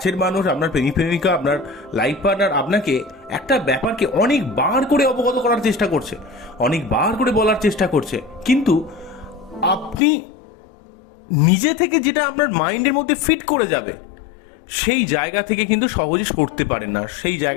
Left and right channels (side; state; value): right; drops out; at 10.0 s